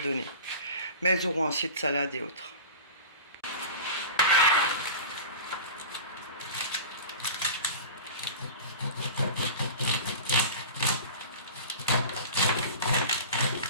Mais elles auront assez de salade et autres.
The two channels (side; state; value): both; inverted; correlation -0.34